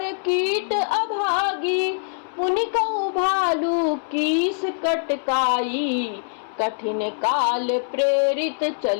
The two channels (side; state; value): right; silent; 63 dB below the other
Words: कीट अभागी। मुनि कहु भालू कीस कटकाई, कठिन काल प्रेरित